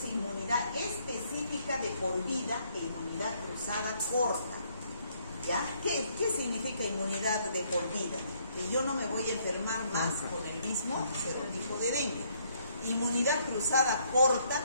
inmunidad específica de por vida e inmunidad cruzada corta. ¿Ya? ¿Qué significa inmunidad de por vida? Que yo no me voy a enfermar más con el mismo serotipo de dengue. Inmunidad cruzada corta,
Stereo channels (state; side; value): inverted; both; correlation -0.68